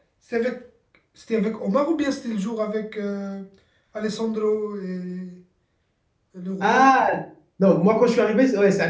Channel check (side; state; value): both; identical; correlation 1.00